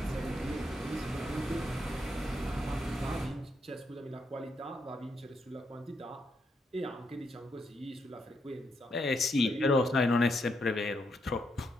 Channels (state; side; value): normal; both; correlation 0.79